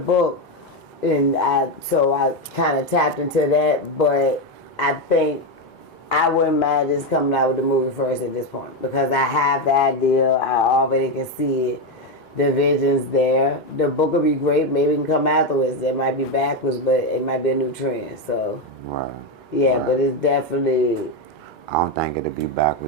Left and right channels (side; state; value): both; normal; correlation 0.08